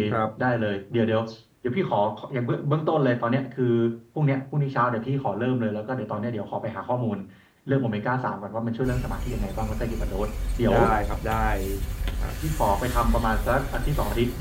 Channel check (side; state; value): both; identical; correlation 1.00